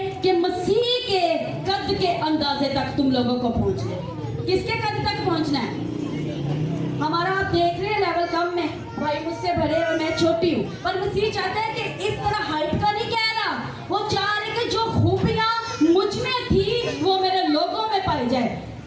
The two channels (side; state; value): both; identical; correlation 1.00